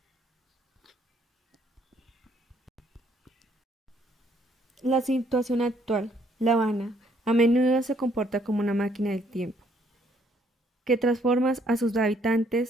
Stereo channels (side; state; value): both; normal; correlation 0.67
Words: La situación actual, La Habana, a menudo se comporta como una máquina del tiempo, que transforma a sus